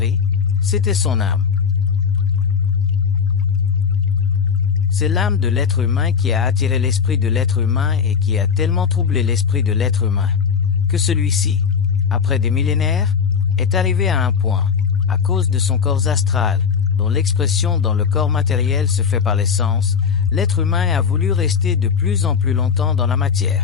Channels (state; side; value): quieter; right; 6.3 dB